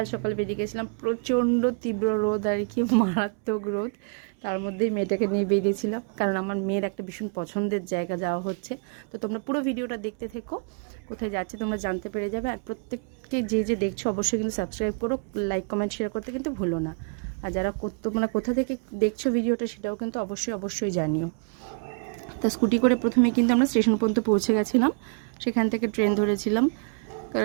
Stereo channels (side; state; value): left; quieter; 39.2 dB